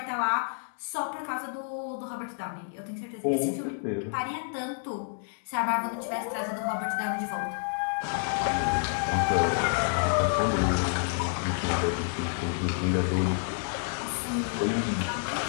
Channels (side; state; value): right; silent; digital silence